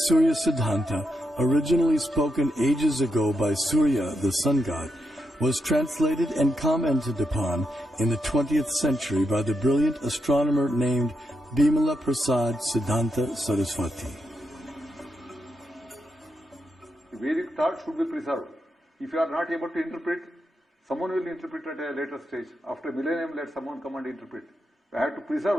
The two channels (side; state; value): both; normal; correlation 0.83